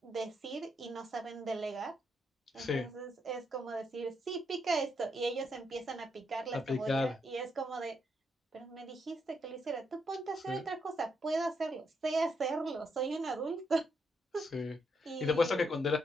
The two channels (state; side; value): normal; both; correlation 0.78